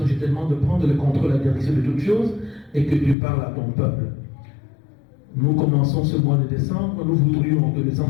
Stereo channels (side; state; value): right; drops out; at 3.2 s